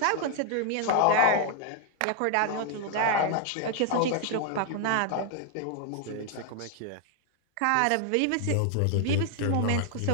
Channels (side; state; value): both; different; correlation 0.00